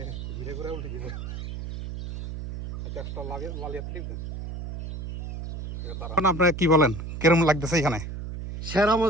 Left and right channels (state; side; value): noise; right; hum, 6 dB below the sound